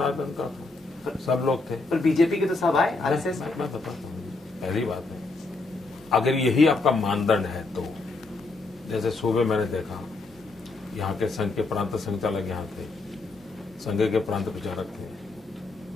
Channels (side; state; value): right; quieter; 3.5 dB